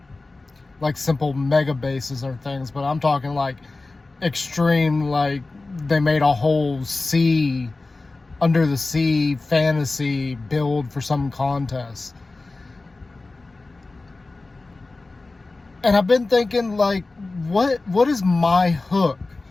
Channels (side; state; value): right; quieter; 3.4 dB